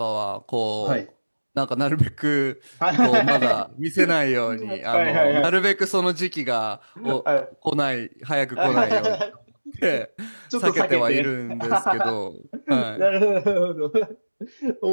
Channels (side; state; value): both; inverted; correlation -1.00